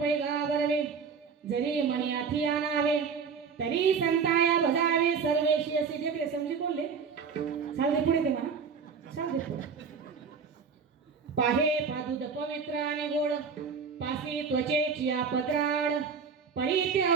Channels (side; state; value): left; quieter; 5.8 dB